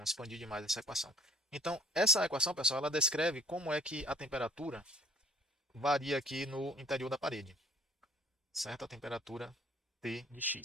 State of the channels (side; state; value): both; normal; correlation 0.52